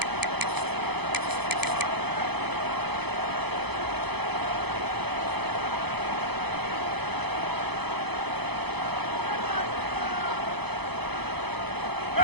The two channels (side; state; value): left; late; 0.98 ms